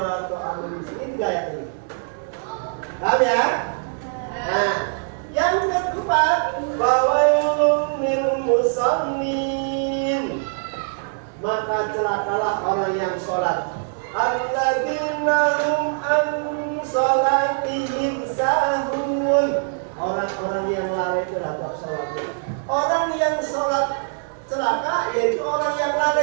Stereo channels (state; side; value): silent; left; digital silence